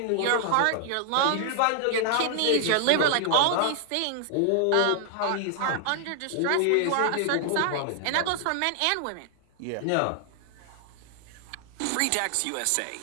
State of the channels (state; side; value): different; both; correlation 0.00